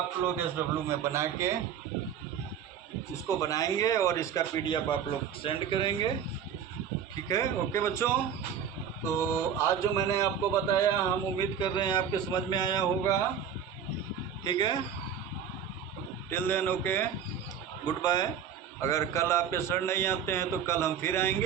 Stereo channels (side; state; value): left; quieter; 8.1 dB